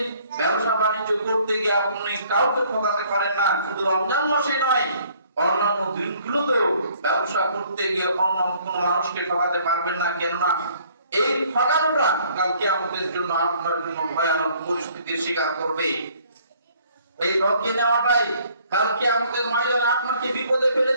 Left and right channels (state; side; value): inverted; both; correlation -0.59